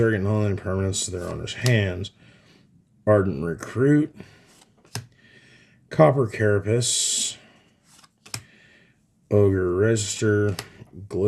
non-land permanents to their owner's hands. Ardent Recruit. Copper Carapace. Ogre Register.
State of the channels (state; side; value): identical; both; correlation 1.00